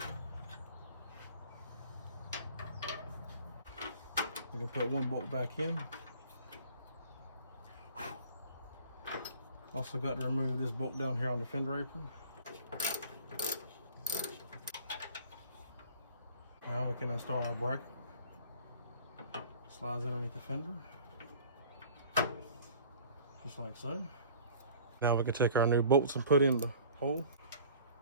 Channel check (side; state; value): both; inverted; correlation -0.47